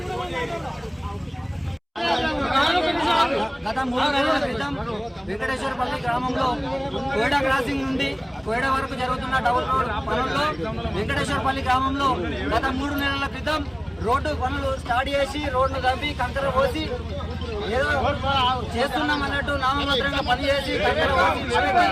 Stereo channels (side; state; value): both; identical; correlation 1.00